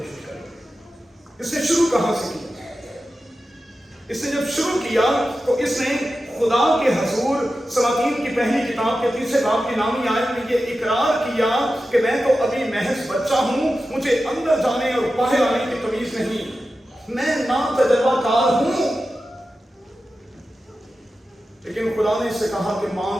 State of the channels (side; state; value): both; normal; correlation 0.93